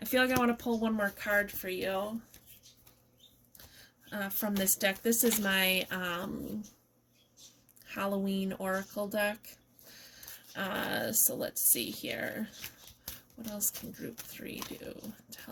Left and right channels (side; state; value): both; identical; correlation 1.00